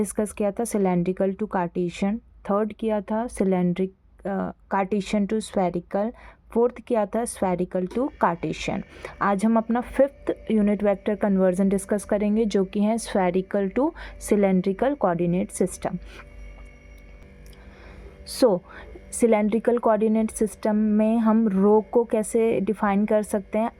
किया था सिलेंड्रिकल टू कार्टेशियन, थर्ड किया था cylindric Cartesian to spherical, fourth किया था स्फेरिकल टू कार्टेशियन। आज हम अपना fifth unit vector conversion discuss करेंगे, जो कि है spherical to cylindrical coordinate system. So cylindrical coordinate system में हम रो को कैसे डिफाइन कर सकते हैं,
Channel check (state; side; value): identical; both; correlation 1.00